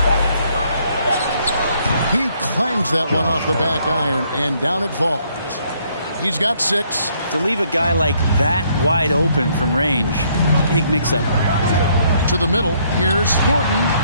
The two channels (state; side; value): inverted; both; correlation -0.68